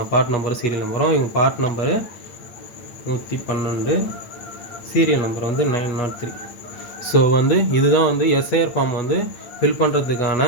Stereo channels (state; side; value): late; right; 8.7 ms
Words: பார்ட் நம்பரும் சீரியல் நம்பரும். இவங்க பார்ட் நம்பரு 112, சீரியல் நம்பர் வந்து 903. ஸோ வந்து இதுதான் வந்து எஸ்ஐஆர் ஃபார்ம் வந்து ஃபில் பண்ணுறதுக்கான